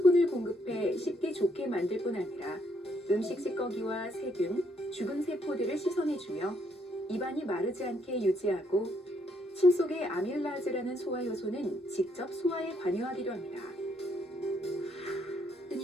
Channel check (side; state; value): both; normal; correlation 0.72